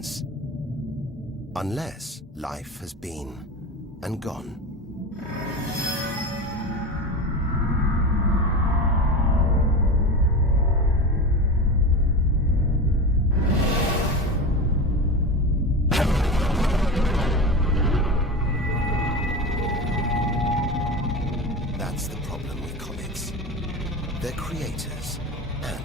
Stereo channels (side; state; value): both; normal; correlation 0.26